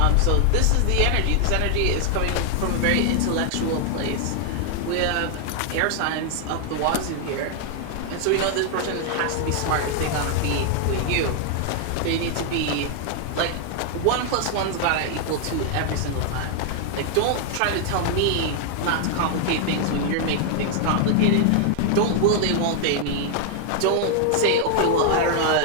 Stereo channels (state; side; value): different; both; correlation 0.00